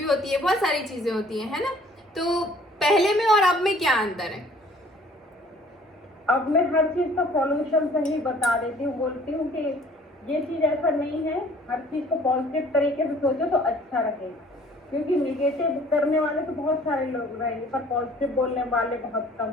होती है, बहुत सारी चीजें होती हैं, है ना? तो पहले में और अब में क्या अंतर है? अब मैं हर चीज़ का सॉल्यूशन सही बता देती हूँ, बोलती हूँ कि ये चीज़ ऐसा नहीं है, हर चीज़ को पॉजिटिव तरीके से सोचो तो अच्छा रहेगा। क्योंकि निगेटिव करने वाले तो बहुत सारे लोग रहेंगे, पर पॉजिटिव बोलने वाले बहुत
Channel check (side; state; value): both; normal; correlation 0.54